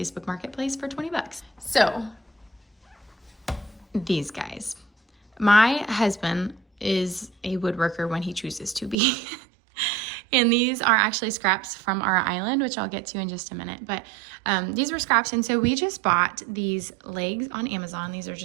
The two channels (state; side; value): drops out; left; at 9.0 s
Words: Marketplace for $20. So these guys, my husband is a woodworker when he chooses to be. And these are actually scraps from our island, which I'll get to in just a minute. But these were scraps. And so we just bought these legs on Amazon. These are